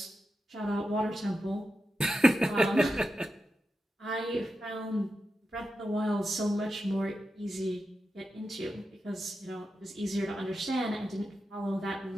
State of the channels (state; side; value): normal; both; correlation 0.89